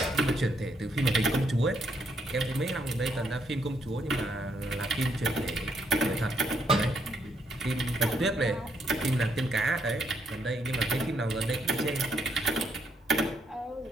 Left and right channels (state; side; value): normal; both; correlation 0.74